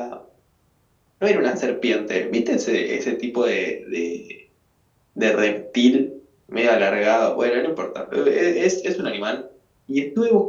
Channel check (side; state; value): both; identical; correlation 1.00